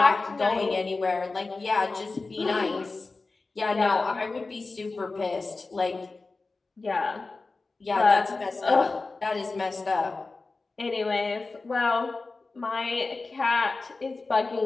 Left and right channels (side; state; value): right; quieter; 3.7 dB